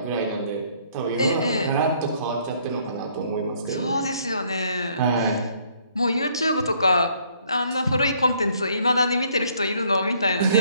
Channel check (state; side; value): inverted; both; correlation -0.64